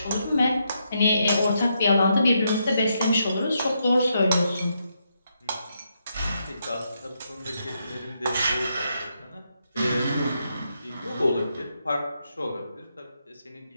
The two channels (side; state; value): both; inverted; correlation -0.80